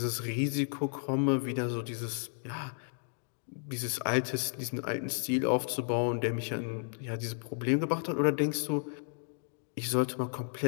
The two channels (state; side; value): silent; right; 56 dB below the other